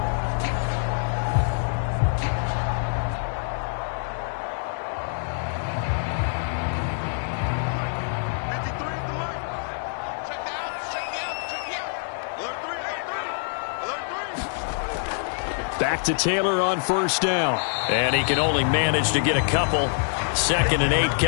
back to Taylor on first down. And he can only manage to get a couple. 2nd and 8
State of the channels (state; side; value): silent; right; digital silence